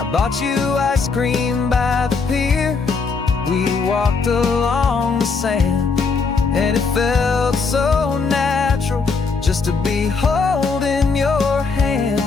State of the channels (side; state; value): right; quieter; 4.7 dB